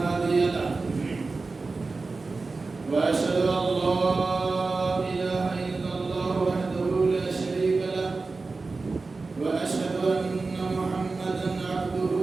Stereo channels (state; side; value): quieter; left; 3.9 dB